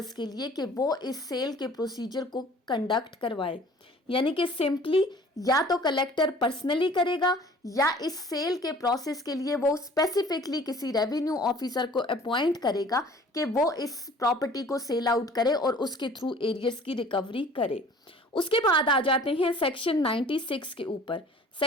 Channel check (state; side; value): normal; both; correlation 0.49